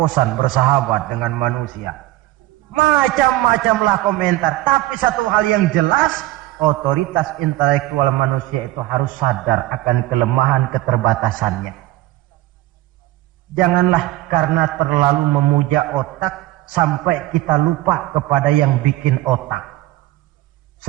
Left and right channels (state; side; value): quieter; left; 16.5 dB